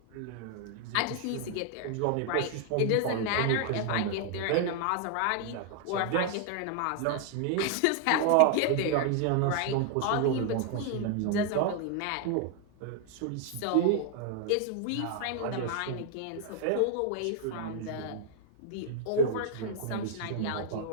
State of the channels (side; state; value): both; different; correlation 0.00